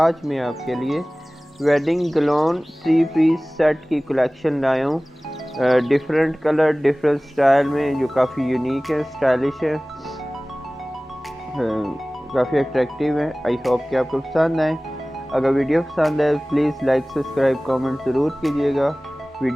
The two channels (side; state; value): both; normal; correlation 0.98